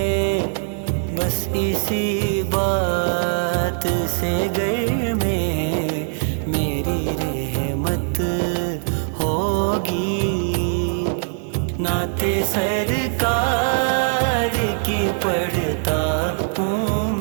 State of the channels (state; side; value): silent; left; 56 dB below the other